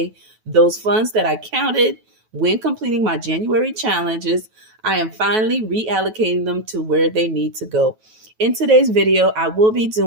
those funds that I counted when completing my January challenges, I am finally reallocating them to where they need to go. In today's video, I will be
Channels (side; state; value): left; late; 9.3 ms